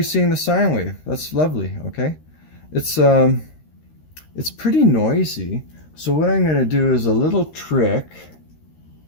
seeing the sine wave. That's lovely. Okay, it's pretty noisy. So what I'm going to do is a little trick,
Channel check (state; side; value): late; right; 13 ms